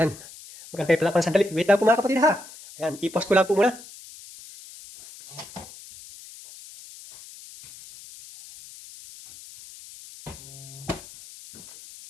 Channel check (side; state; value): left; noise; hiss, 18 dB below the sound